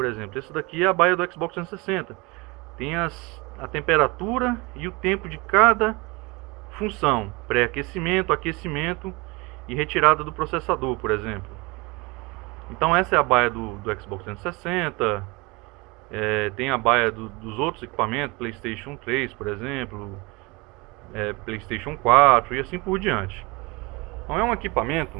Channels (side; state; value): left; quieter; 25.7 dB